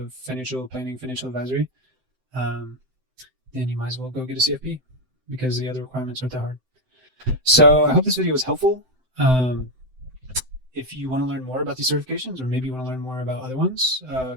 financial planning, financial advisory, then you might as well go get a CFP because the other requirements aren't that hard. So I hope this video was helpful. If you want to learn more about these certifications or maybe you want to learn more about other ones,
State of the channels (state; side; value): late; left; 7.8 ms